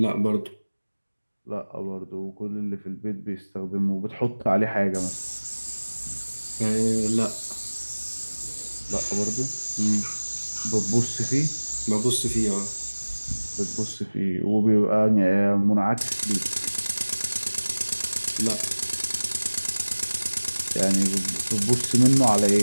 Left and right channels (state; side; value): inverted; both; correlation -1.00